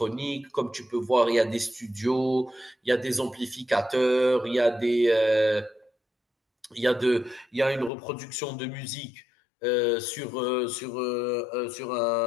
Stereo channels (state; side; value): drops out; right; at 7.9 s